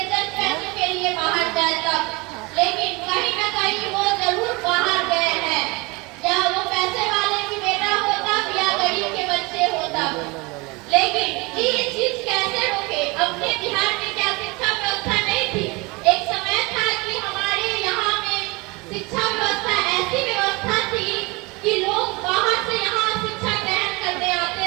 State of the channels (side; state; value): left; quieter; 25.7 dB